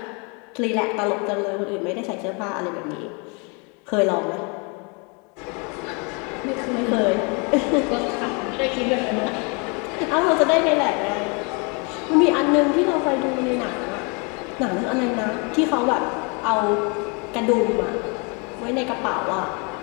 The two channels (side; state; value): right; quieter; 32.7 dB